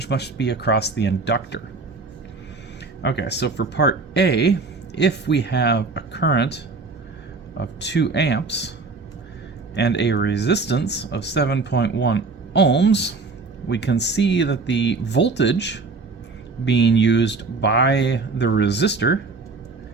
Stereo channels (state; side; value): quieter; left; 4.0 dB